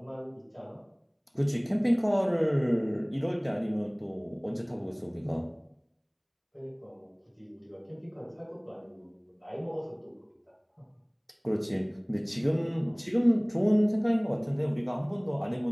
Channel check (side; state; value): both; identical; correlation 1.00